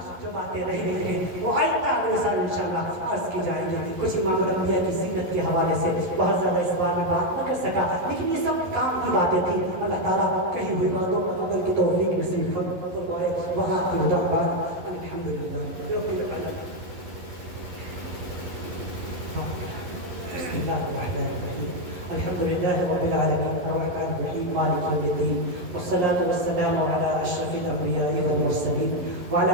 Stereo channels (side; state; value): left; late; 11 ms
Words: جو باتیں رہ گئی ہیں وہ آئندہ اگلے سال انشاءاللہ عرض کی جائیں گی. کچھ امام الانبیاء کی سیرت کے حوالے سے بہت زیادہ اس بار میں بات نہ کر سکا, لیکن یہ سب کام کی باتیں تھیں. اللہ تعالیٰ کہی ہوئی باتوں کو عمل کی توفیق نصیب فرمائے. وہاں کی دعوات الحمدللہ. بسم الله الرحمن الرحيم. الحمد لله رب العالمين الرحمن الرحيم مالك يوم الدين, والصلاة والسلام على أشرف الأنبياء والمرسلين